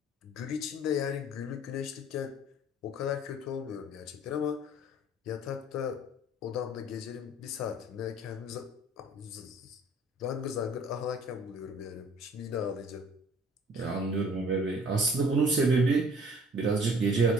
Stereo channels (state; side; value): normal; both; correlation 0.53